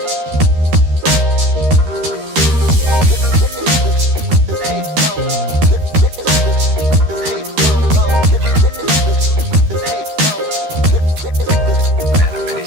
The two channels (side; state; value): left; late; 13 ms